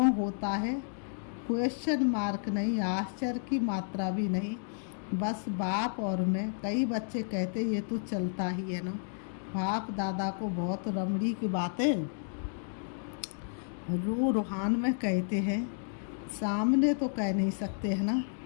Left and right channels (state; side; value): silent; right; digital silence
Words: होता है? क्वेश्चन मार्क नहीं, आश्चर्य की मात्रा भी नहीं, बस बाप और मैं। कई बच्चे कहते ये तो चलता ही है ना। बाप दादा को बहुत रमड़ी की बातें रूहान में कहते हैं, सामने तो कह नहीं सकते है ना,